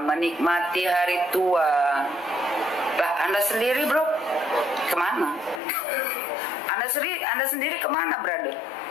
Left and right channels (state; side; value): drops out; right; at 5.6 s